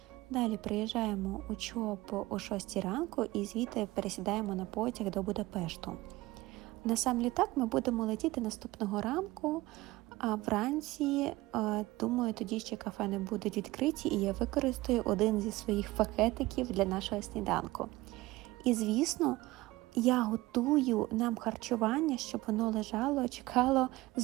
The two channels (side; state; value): left; quieter; 19.2 dB